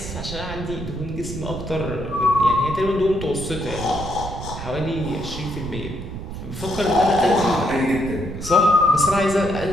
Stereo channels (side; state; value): right; noise; rumble, 9 dB below the sound